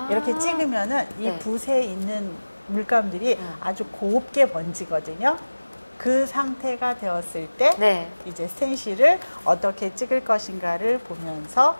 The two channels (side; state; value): both; inverted; correlation -1.00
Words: 이렇게 찍으면은 이 네. 붓에 있는 물감들이 아주 곱게 번지거든요. 그 상태가 되었을 때 네. 이제 스텐실을 어떻게 찍을 것인가를 보면서